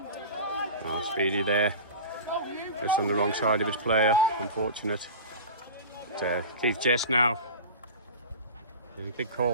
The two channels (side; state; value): both; inverted; correlation -0.31